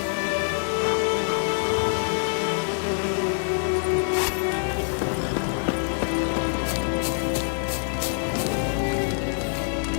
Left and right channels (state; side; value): silent; right; digital silence